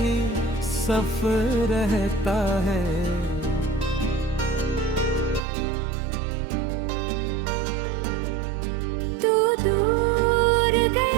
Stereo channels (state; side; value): drops out; left; at 5.4 s